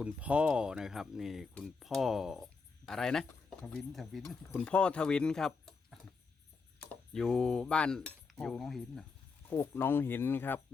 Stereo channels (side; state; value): right; quieter; 4.7 dB